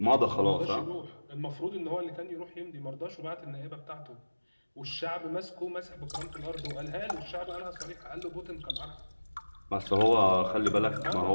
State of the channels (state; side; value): inverted; both; correlation -1.00